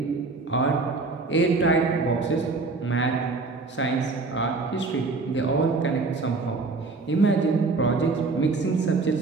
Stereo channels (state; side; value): quieter; left; 3.8 dB